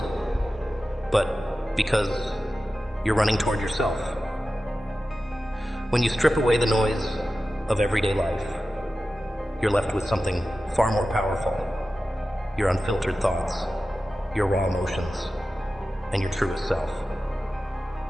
but because you're running toward yourself. When you strip away the noise of everyday life, you're left with something far more powerful: your unfiltered thoughts, your raw emotions, and your truest self.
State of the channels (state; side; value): normal; both; correlation 0.94